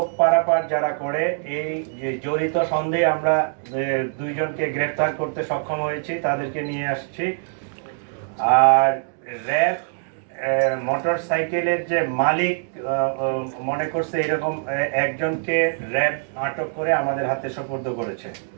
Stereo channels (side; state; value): left; silent; digital silence